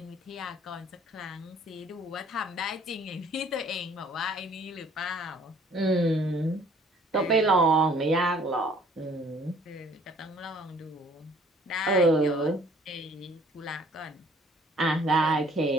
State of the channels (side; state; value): both; normal; correlation 0.57